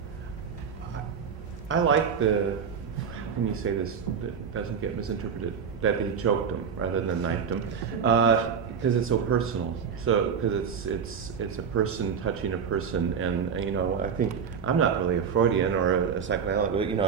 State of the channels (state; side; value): quieter; left; 6.7 dB